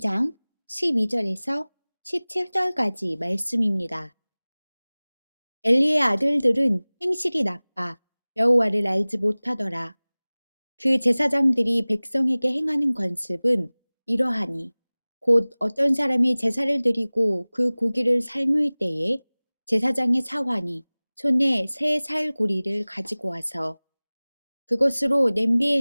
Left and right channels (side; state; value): both; inverted; correlation -1.00